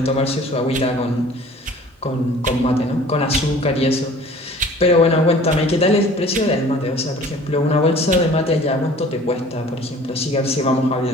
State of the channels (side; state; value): both; normal; correlation 0.48